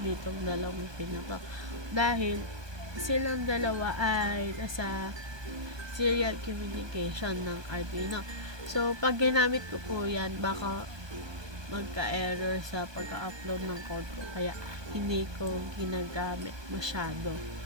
dalawang pin na to. Dahil silang dalawa ay nasa serial communication ng Arduino. So, pag ginamit ko po yan, baka magka-error sa pagka-upload ng code ko. Kaya, hindi ko ginagamit masyado.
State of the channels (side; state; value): left; late; 1.2 ms